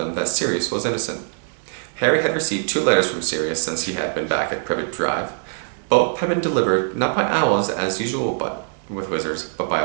that Sirius was innocent. Harry had received 2 letters from Sirius since he had been back at Privet Drive. Both had been delivered not by owls as usual with wizards, but by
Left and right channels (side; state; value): left; silent; digital silence